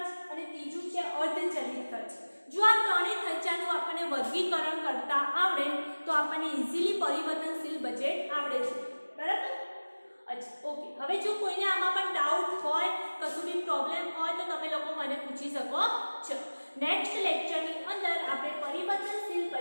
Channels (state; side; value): inverted; both; correlation -1.00